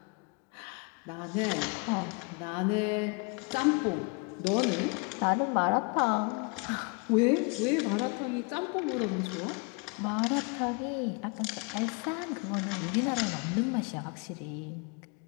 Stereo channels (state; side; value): quieter; right; 32.8 dB